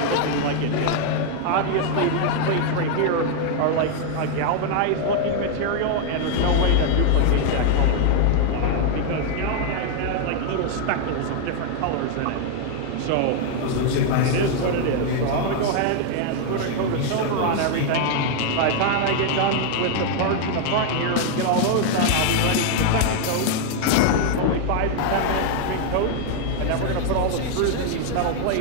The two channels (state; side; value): different; both; correlation 0.00